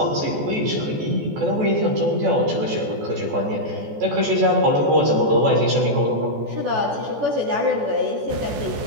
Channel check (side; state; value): left; late; 14 ms